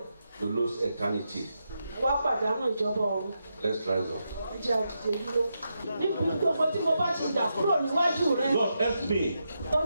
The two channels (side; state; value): both; inverted; correlation -0.85